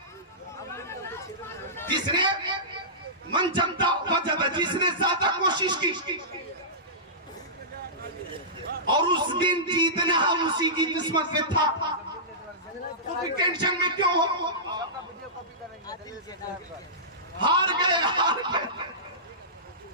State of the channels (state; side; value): normal; both; correlation -0.20